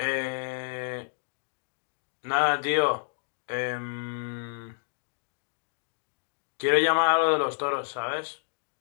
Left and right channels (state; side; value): silent; right; digital silence